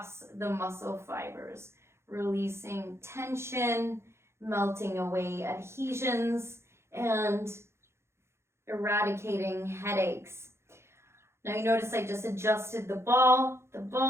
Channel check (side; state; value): left; late; 0.13 ms